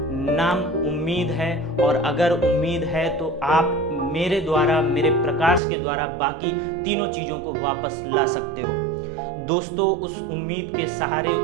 नाम उम्मीद है और अगर उम्मीद है तो आप मेरे द्वारा, मेरे प्रकाश के द्वारा बाकी तीनों चीज़ों को वापस ला सकते हो। दोस्तों, उस उम्मीद के सहारे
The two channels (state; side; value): drops out; left; at 5.6 s